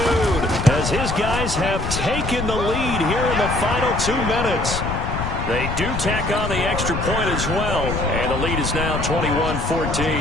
as his guys have taken the lead here in the final 2 minutes. They do tack on the extra point as well, and the lead is now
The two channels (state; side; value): noise; left; rumble, 4 dB below the sound